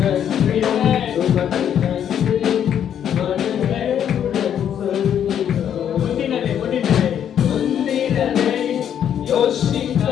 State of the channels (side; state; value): right; quieter; 9.3 dB